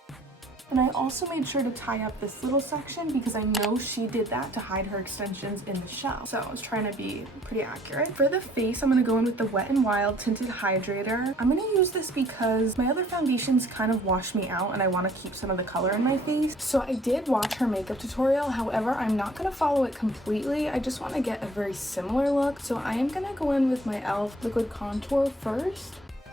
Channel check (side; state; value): both; normal; correlation 0.58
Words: And I also made sure to tie up this little section because I know she did that to hide her extensions in the show. So I was trying to be pretty accurate. For the face, I'm going to go in with the Wet n Wild Tinted Hydrator. I'm going to use this because my other foundations kind of wash me out and I want to keep some of the color in my face. So I did watch her makeup tutorial. However, I'm not going to follow it completely. I just want to get a very similar look. So I am going to go in with my e.l.f. liquid contour first.